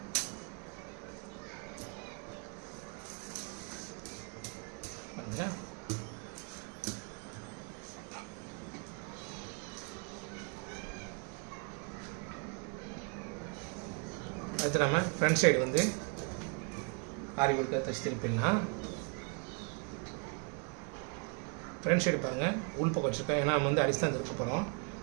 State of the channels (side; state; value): left; quieter; 36.0 dB